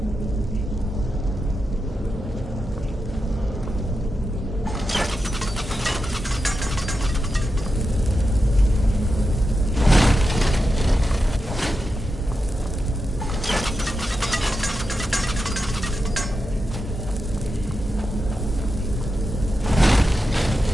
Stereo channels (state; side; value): normal; both; correlation 0.89